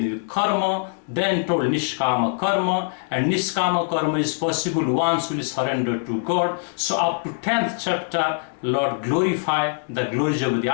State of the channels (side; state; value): right; silent; digital silence